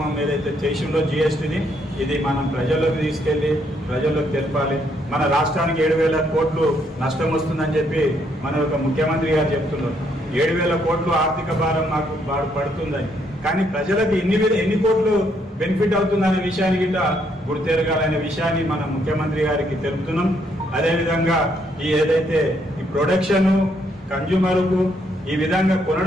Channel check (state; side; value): normal; both; correlation 0.72